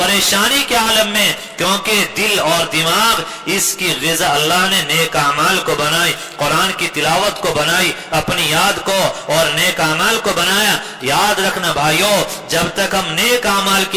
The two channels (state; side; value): identical; both; correlation 1.00